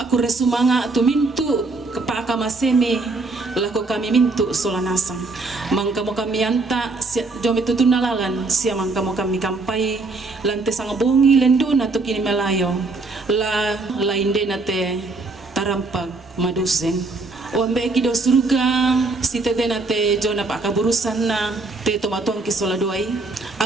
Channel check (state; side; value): quieter; left; 3.5 dB